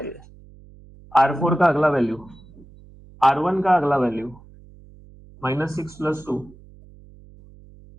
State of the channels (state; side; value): noise; right; hum, 23 dB below the sound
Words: ये। R4 का अगला वैल्यू, R1 का अगला वैल्यू -6 + 2,